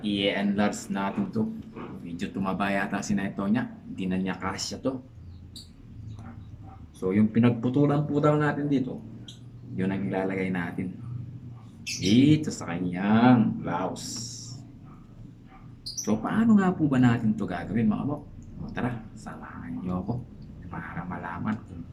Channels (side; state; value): both; identical; correlation 1.00